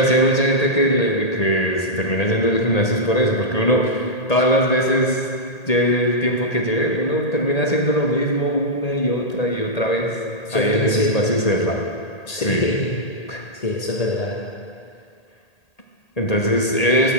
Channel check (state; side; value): late; right; 1.8 ms